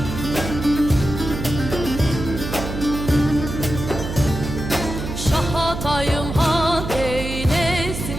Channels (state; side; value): noise; right; hum, 6 dB below the sound